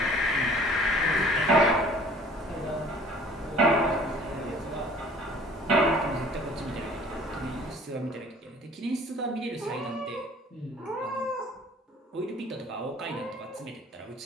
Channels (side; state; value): both; normal; correlation 0.51